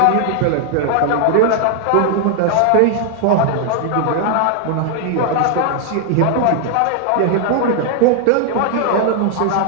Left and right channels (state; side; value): different; both; correlation 0.00